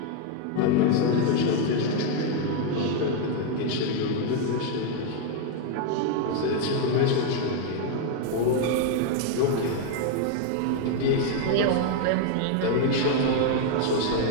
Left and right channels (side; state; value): both; different; correlation 0.01